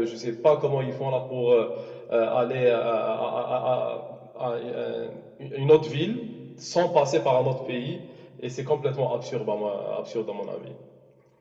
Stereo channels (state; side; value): identical; both; correlation 1.00